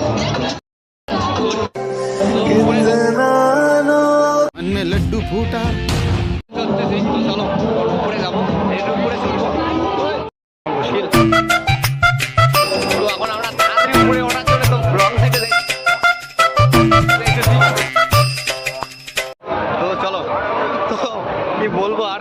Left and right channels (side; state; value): both; identical; correlation 1.00